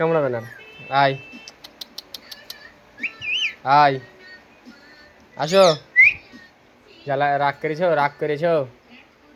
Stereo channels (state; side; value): identical; both; correlation 1.00